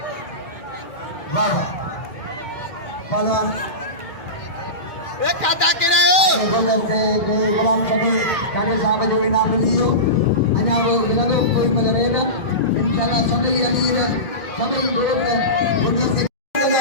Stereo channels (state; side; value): late; right; 2.3 ms